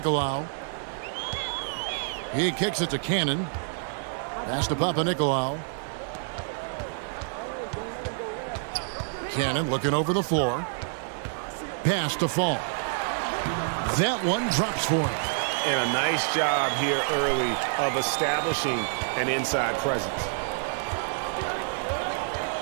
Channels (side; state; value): left; silent; digital silence